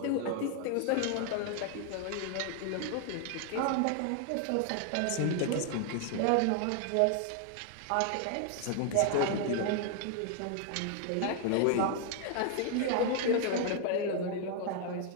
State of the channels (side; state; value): both; different; correlation 0.00